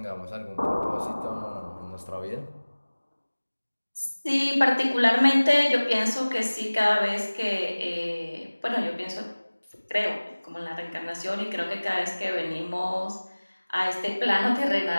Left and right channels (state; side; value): inverted; both; correlation -1.00